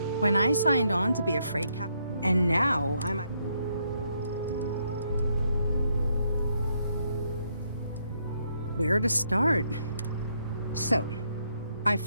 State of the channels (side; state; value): both; inverted; correlation -0.75